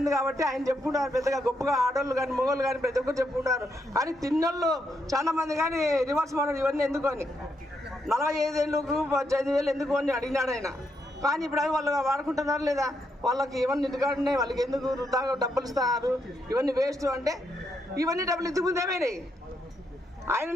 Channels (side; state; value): both; normal; correlation 0.79